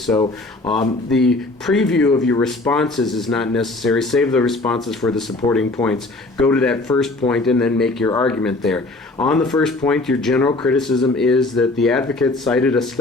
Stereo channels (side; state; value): right; quieter; 3.0 dB